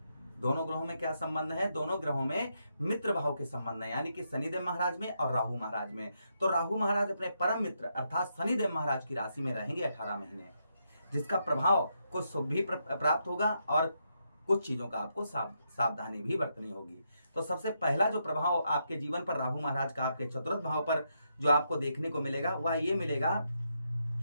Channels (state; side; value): inverted; both; correlation -0.80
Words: में क्या संबंध है? दोनों ग्रहों में मित्र भाव के संबंध है, यानी कि शनिदेव महाराज में और राहु महाराज में। तो राहु महाराज अपने परम मित्र अर्थात शनिदेव महाराज की राशि में रहेंगे 18 महीने, जिसका प्रभाव कुछ शुभ भी प्राप्त होगा और कुछ चीजों का आपको सावधानी भी बरतनी होगी। तो सबसे पहला जो प्रभाव आपके जीवन पर राहु महाराज का आपके चतुर्थ भाव पर जो आपको देखने को मिलेगा वह ये मिलेगा